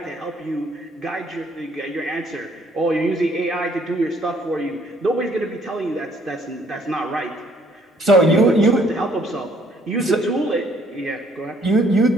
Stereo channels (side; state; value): both; normal; correlation 0.64